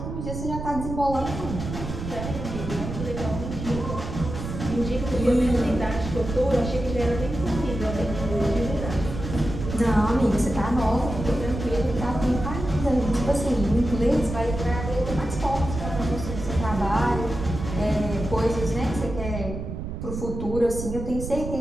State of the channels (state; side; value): noise; right; rumble, 6 dB below the sound